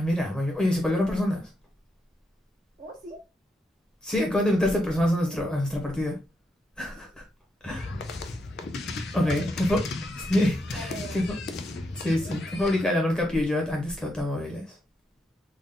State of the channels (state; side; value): normal; both; correlation 0.81